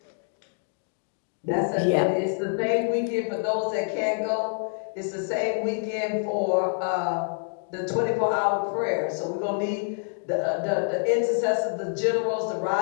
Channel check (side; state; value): right; silent; 59 dB below the other